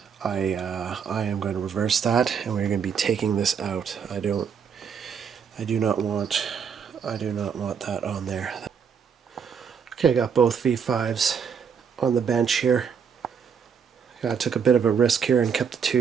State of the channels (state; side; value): quieter; left; 6.9 dB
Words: I am going to reverse that, and we're going to be taking this out. I do not want that on there. Okay, I got both V5s on the bench here. I took a bit of a risk here and kept the